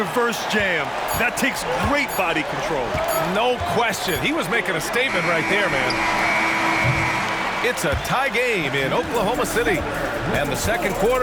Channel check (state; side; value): identical; both; correlation 1.00